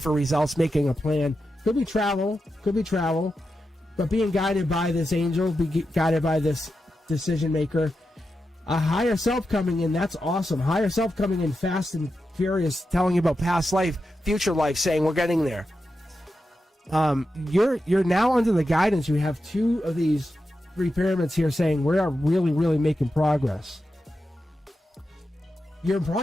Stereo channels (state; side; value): normal; both; correlation 0.89